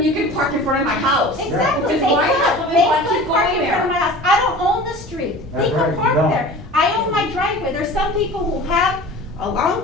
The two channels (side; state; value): both; normal; correlation 0.39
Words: you can park in front of my house. Exactly, Which they is why could, they they want to could keep park going in front of there. my house, I don't own the street, they That's could right, you park don't. there. I own my driveway, there's some people who have a long